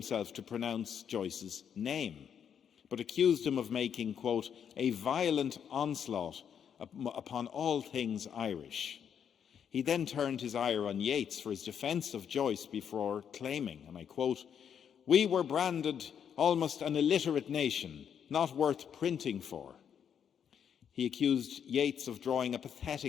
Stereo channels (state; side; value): quieter; right; 8.1 dB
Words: to pronounce Joyce's name, but accused him of making, quote, "a violent onslaught upon all things Irish." He then turned his ire on Yeats for his defence of Joyce before claiming, and I quote, "We were branded almost an illiterate nation, not worth printing for." He accused Yeats of drawing a